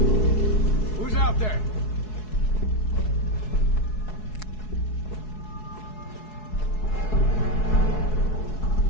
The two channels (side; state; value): right; late; 4.7 ms